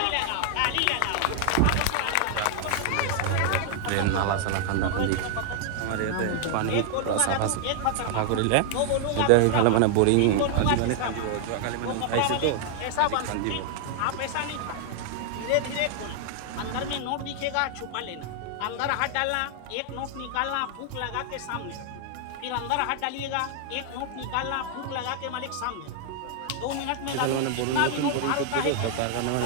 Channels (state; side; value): different; both; correlation 0.00